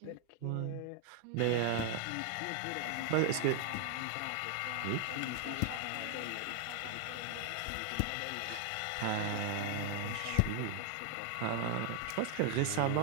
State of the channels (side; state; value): both; different; correlation 0.00